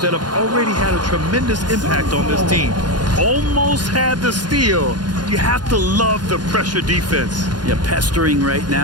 that have already had a tremendous impact on this team. Almost had the steal. You have to love the pressure defense. Yeah, pestering right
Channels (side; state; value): left; late; 0.70 ms